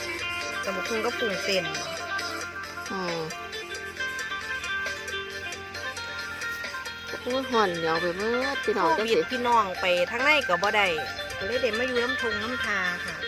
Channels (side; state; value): both; identical; correlation 1.00